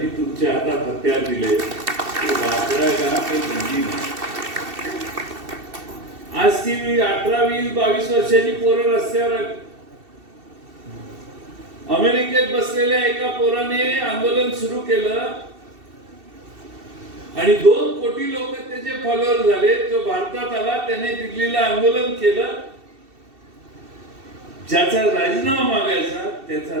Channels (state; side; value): late; left; 2.7 ms